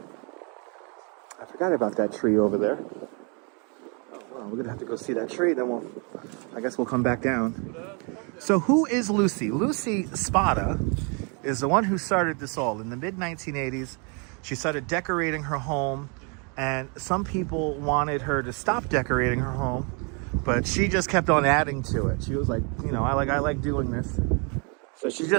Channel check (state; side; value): quieter; left; 34.8 dB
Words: I forgot about that tree over there. Oh, well, we're going to have to go see that tree, then I guess we'll come back down. So who is Lucy? Lucy Spada is the one who started this all. In the mid-1980s, she started decorating her home, and some people wanted her to stop decorating her home, but she just kept on adding to it. She was like, you know, I like doing this. So she